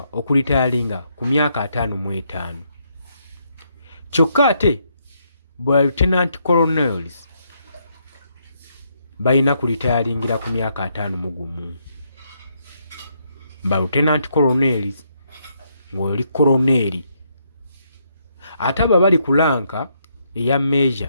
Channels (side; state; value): both; inverted; correlation -0.75